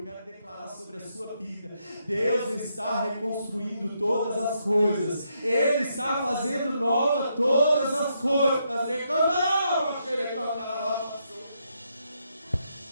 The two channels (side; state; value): both; inverted; correlation -0.78